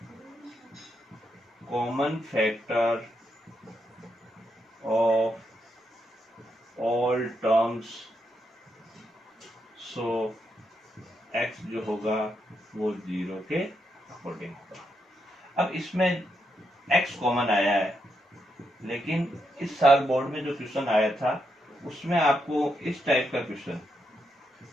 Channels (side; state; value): both; normal; correlation 0.81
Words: common factor of all terms, so x जो होगा वो 0 के अकॉर्डिंग होगा। अब इसमें x कॉमन आया है, लेकिन इस साल बोर्ड में जो क्वेश्चन आया था उसमें आपको इस टाइप का क्वेश्चन,